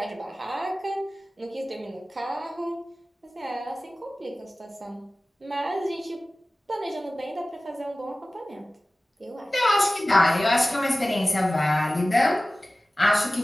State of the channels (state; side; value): normal; both; correlation 0.96